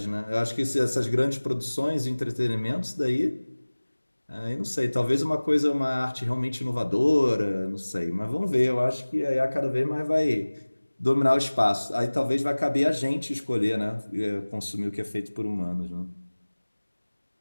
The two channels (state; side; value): inverted; both; correlation -1.00